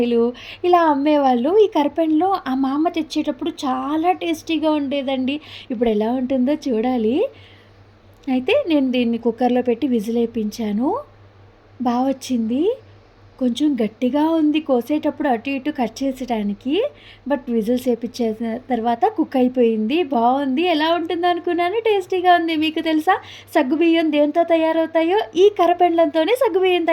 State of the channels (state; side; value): identical; both; correlation 1.00